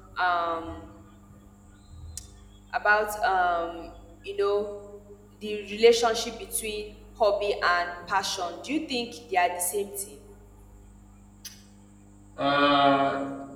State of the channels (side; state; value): both; identical; correlation 1.00